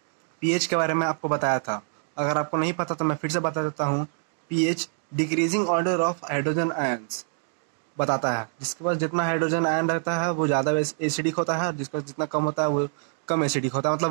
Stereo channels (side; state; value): left; silent; 61 dB below the other